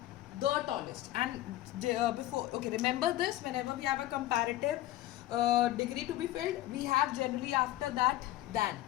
The tallest. And remember this, whenever we have a comparative degree to be filled, we have generally after that than.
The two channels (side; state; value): right; quieter; 15.2 dB